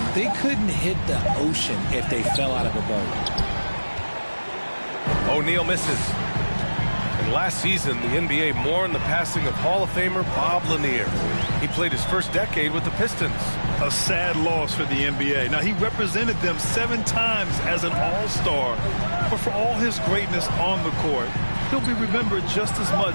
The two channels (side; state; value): both; inverted; correlation -1.00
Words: They couldn't hit the ocean if they fell out of a boat. O'Neal misses. And last season, the NBA mourned the passing of Hall of Famer Bob Lanier. He played his first decade with the Pistons. A sad loss for the NBA. Now, he represented them 7 times as an all-star. But for all his greatness on the court, he'll be remembered just as